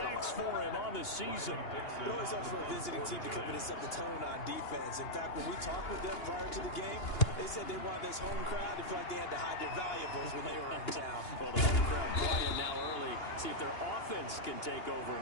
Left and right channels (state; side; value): late; right; 2.8 ms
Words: for him on the season. It always helps for a visiting team to come in and set the tone on defense. In fact, when we talked with them prior to the game, they said they wanted this home crowd to feel like they had to hide their valuables when they were in town. Well, the home crowd playing now early. See if their offense can take over